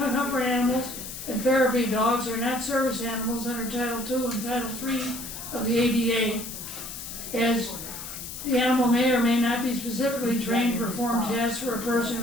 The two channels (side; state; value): left; noise; hiss, 9 dB below the sound